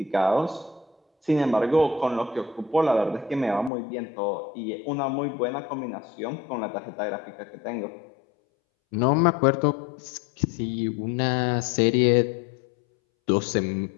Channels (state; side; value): drops out; right; at 3.7 s